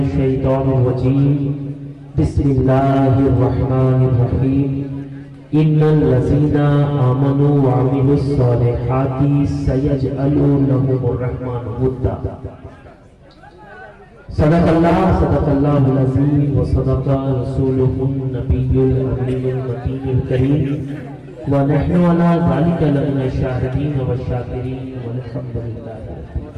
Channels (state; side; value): identical; both; correlation 1.00